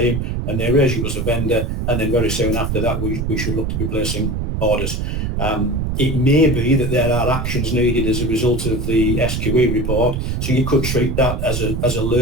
and they raise you as a vendor, and then very soon after that, we should look to be placing orders. It may be that there are actions needed as a result of the SQE report, so you could treat that as a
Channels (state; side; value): noise; right; rumble, 1 dB below the sound